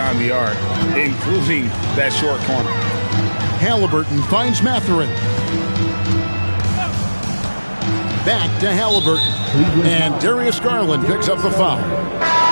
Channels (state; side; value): inverted; both; correlation -1.00